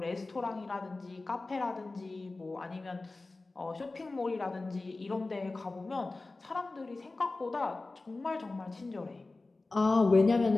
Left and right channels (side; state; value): right; quieter; 3.3 dB